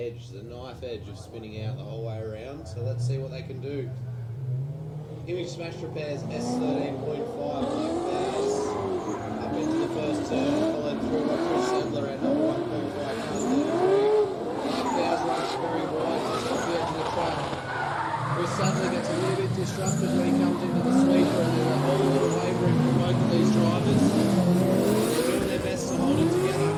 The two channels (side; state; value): both; identical; correlation 1.00